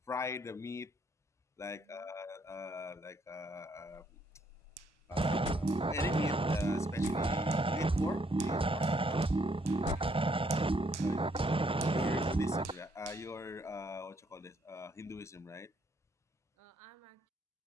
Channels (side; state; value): both; normal; correlation 0.70